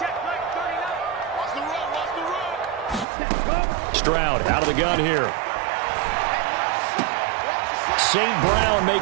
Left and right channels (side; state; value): left; drops out; at 3.1 s